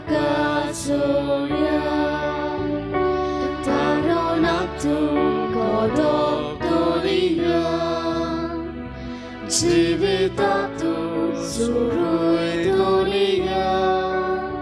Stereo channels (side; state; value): both; identical; correlation 1.00